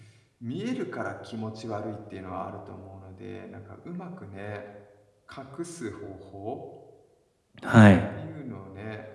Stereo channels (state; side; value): identical; both; correlation 1.00